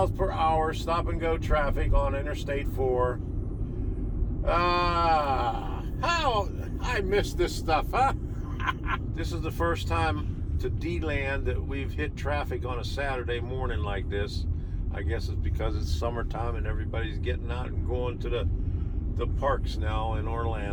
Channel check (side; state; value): both; identical; correlation 1.00